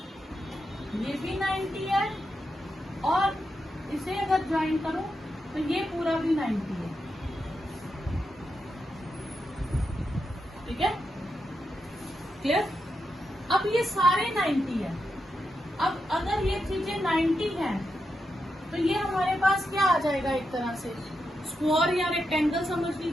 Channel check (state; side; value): normal; both; correlation 0.86